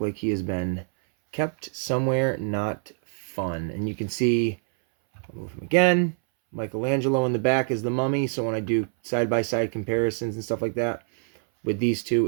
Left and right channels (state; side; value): silent; left; 61 dB below the other